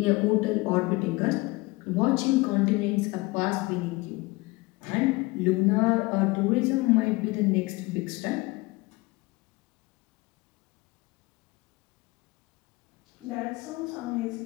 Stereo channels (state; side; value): quieter; right; 23.0 dB